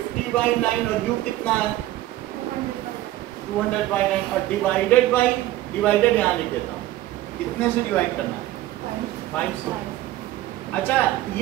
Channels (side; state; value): left; quieter; 15.1 dB